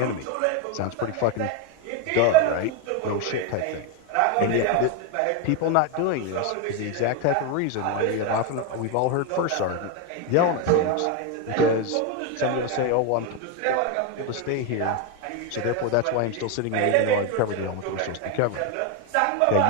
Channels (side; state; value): both; different; correlation 0.02